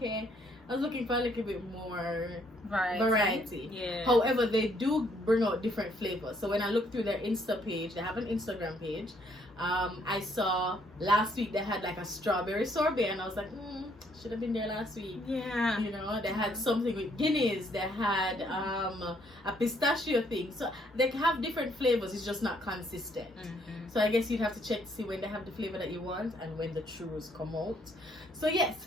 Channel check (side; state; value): both; normal; correlation 0.68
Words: I was looking for a little bit more variety. Yeah. However, they do bring out different flavors. So when I looked through their Insta page, they have an Instagram page. I saw last week they had like a strawberry sorbet, and I was like, should have been there last week. Yeah. You know, they had something with Guinness. They had a pistachio thing. So they have different flavors. It's just not consistent. So I guess you'd have to check to see when they have the flavor that you want and when the churros come out. So yes,